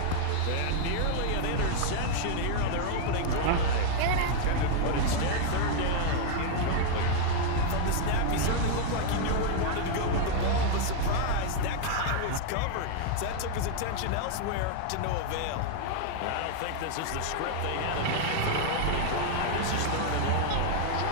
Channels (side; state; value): both; different; correlation 0.00